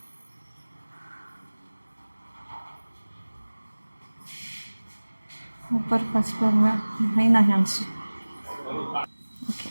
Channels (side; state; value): both; inverted; correlation -1.00